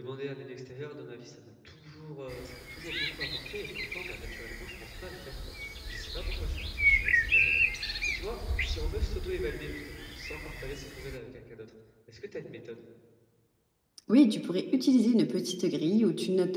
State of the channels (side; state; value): both; identical; correlation 1.00